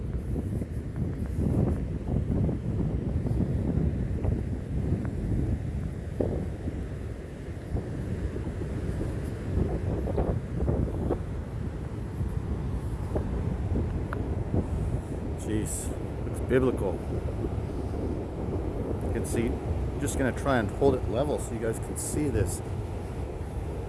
Jeez, looks biblical. You can see, I'm just going to try and hold it level so you guys can see this.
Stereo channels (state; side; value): identical; both; correlation 1.00